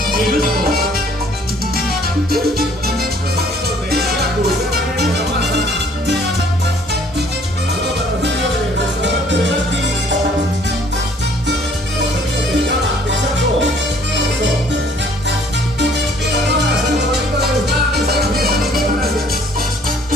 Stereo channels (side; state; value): both; normal; correlation 0.59